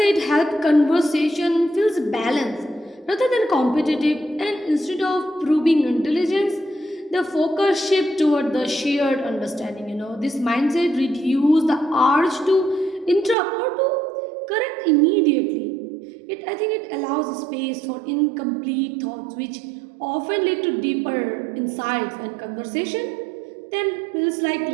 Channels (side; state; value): left; drops out; at 13.4 s